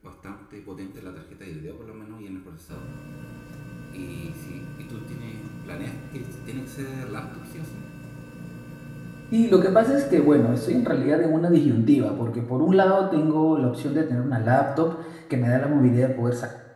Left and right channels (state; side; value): identical; both; correlation 1.00